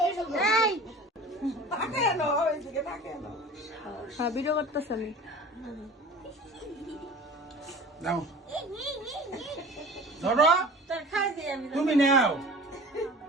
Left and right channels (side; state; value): both; normal; correlation 0.40